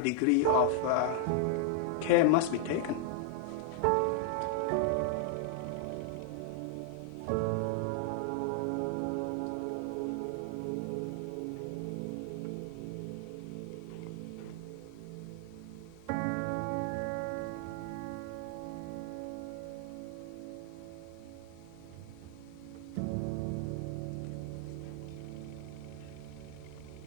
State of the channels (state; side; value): different; both; correlation 0.00